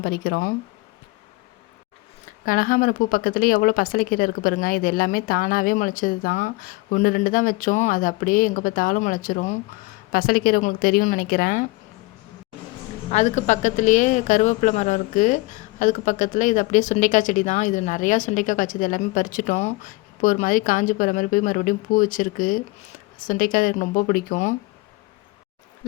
பறிக்கிறோம். கனகாம்பரம் பூ பக்கத்துலேயே எவ்வளோ பசலைக்கீரை இருக்குது பாருங்கள். இது எல்லாமே தானாகவே முளைச்சது தான். 1 2 தான் வச்சோம், அது அப்படியே எங்கே பார்த்தாலும் முளைச்சிரும். பசலைக்கீரை உங்களுக்கு தெரியும்னு நினைக்கிறேன். அதுக்கு பக்கத்துலேயே கருவேப்பிலை மரம் இருக்குது. அதுக்கு பக்கத்தில் இது அப்படியே சுண்டைக்காய் செடி தான். இது நிறையா சுண்டைக்காய் காய்ச்சது, எல்லாமே பறிச்சிட்டோம். இப்போ ஒரு மாதிரி காஞ்சி போகிற மாதிரி போய் மறுபடியும் பூ வச்சுருக்கு. சுண்டைக்காய் எனக்கு ரொம்ப பிடிக்கும்.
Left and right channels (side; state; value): right; quieter; 22.6 dB